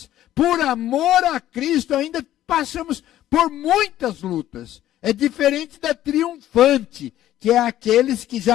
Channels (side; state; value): right; quieter; 13.0 dB